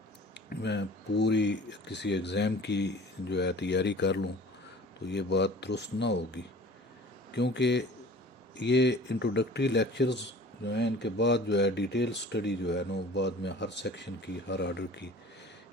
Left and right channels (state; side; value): normal; both; correlation 0.45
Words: میں پوری کسی ایگزام کی جو ہے تیاری کر لوں تو یہ بات درست نہ ہوگی، کیونکہ یہ انٹروڈکٹری لیکچرز جو ہیں ان کے بعد جو ہے ڈیٹیل سٹڈی جو ہے نا وہ بعد میں ہر سیکشن کی، ہر آرڈر کی